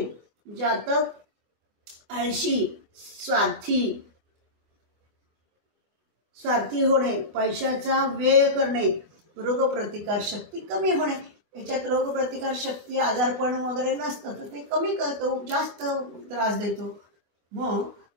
जातक आळशी, स्वार्थी होणे, पैशाचा व्यय करणे, रोगप्रतिकार शक्ती कमी होणे. याच्यात रोगप्रतिकार शक्ती, आजारपण वगैरे नसतं तर ते कमी करतो, जास्त त्रास देतो. मग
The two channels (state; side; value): late; left; 24 ms